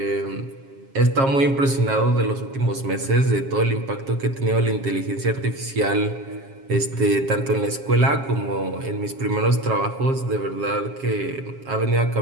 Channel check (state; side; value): late; left; 7.4 ms